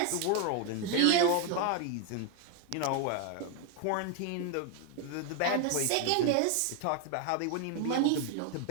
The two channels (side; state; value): both; different; correlation 0.01